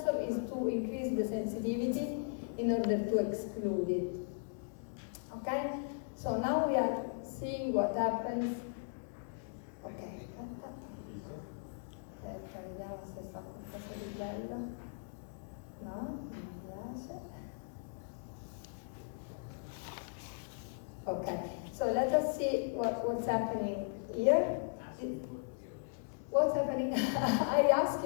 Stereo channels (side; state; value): right; silent; digital silence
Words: is to increase the sensitivity in order to exclude it. Okay? So now we are seeing what happens. Ok, aspetta, vediamo se fa qualcosa di bello. No, non mi piace. Okay, so let us see what's happening here. What's happening? I ask